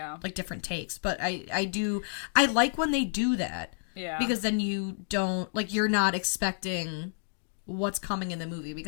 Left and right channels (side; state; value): right; silent; digital silence